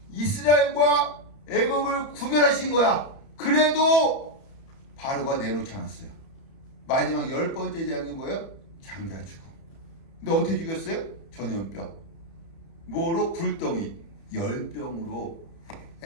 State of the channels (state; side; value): late; right; 31 ms